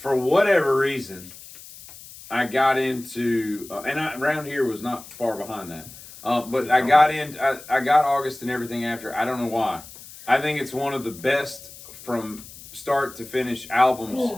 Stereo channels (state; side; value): noise; left; hiss, 17 dB below the sound